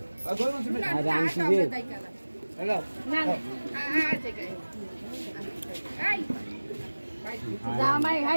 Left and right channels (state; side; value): inverted; both; correlation -1.00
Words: আরে আমি কি হ্যালো না এই জামাই